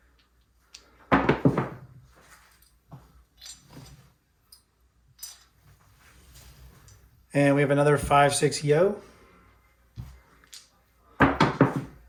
And we have another 5-6 yo.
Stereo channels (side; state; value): both; identical; correlation 1.00